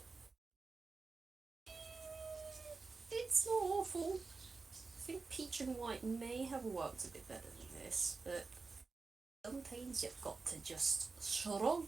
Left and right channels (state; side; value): quieter; left; 4.2 dB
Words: It's not awful. I think peach and white may have worked a bit better than this, but sometimes you've got to just